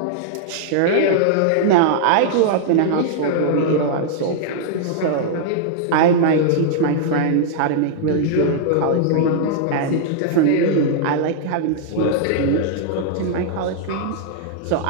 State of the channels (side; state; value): both; different; correlation -0.01